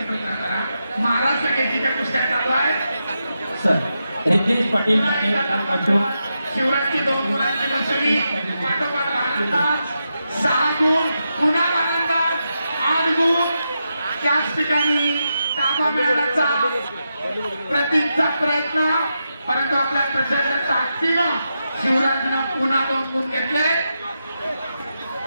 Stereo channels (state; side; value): inverted; both; correlation -0.87